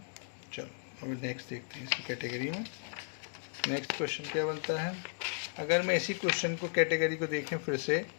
चलो अब नेक्स्ट देखते हैं इसी कैटेगरी में। नेक्स्ट क्वेश्चन क्या बनता है। अगर मैं इसी क्वेश्चन को कैटेगरी को देखें फिर से,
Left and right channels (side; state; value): right; silent; 54 dB below the other